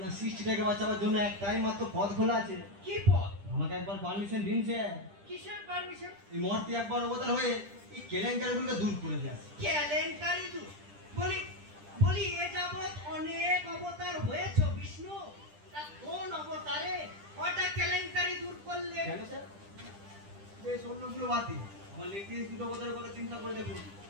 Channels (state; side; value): late; left; 10 ms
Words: সৃষ্টিটাকে বাঁচাবার জন্য একটাই মাত্র পথ খোলা আছে। কি পথ? আমাকে একবার পারমিশন দিন স্যার। কিসের পারমিশন? এই মূর্তি একবার অবতার হয়ে এই কেলেঙ্কারিগুলোকে দূর করে দিয়ে আসে। কেলেঙ্কারি দূর? বলি বলি এ যাবৎ অনেক অবতার হয়েছে বিষ্ণু, তা কোন অবতারে কটা কেলেঙ্কারি দূর করলে? কেন স্যার? বেশ অন্যগুলো বাদ দিন, আমার লেটেস্ট দুটো অবতারের কথা চিন্তা করে দেখুন।